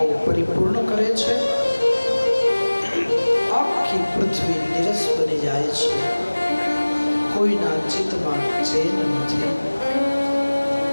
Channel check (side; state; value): both; inverted; correlation -1.00